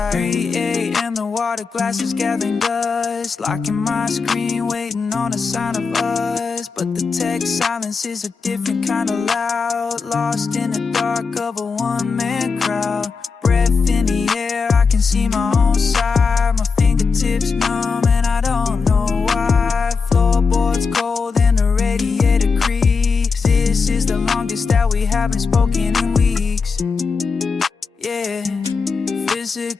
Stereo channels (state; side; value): quieter; right; 5.0 dB